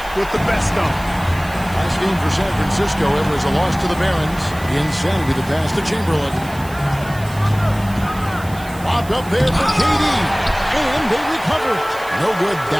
with the best of them. Last game for San Francisco, it was a loss to the Barons. Insanity the pass to Chamberlain. Lobbed up there for KD. And they recover. No good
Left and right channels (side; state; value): right; noise; hiss, 19 dB below the sound